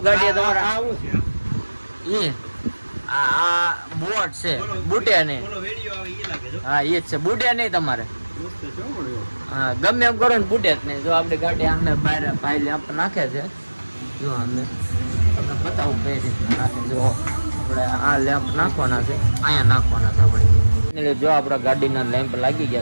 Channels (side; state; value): both; inverted; correlation -1.00